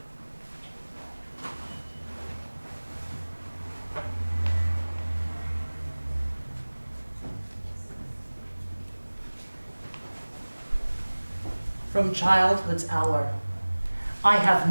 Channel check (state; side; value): inverted; both; correlation -1.00